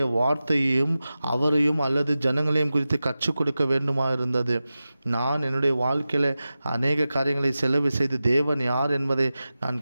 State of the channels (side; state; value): both; inverted; correlation -0.94